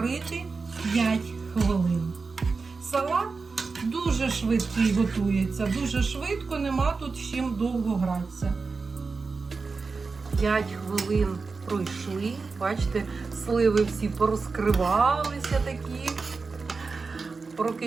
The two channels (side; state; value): left; quieter; 4.4 dB